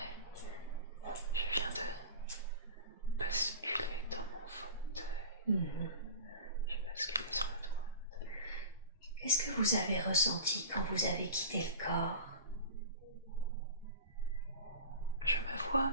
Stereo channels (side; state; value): both; inverted; correlation -0.33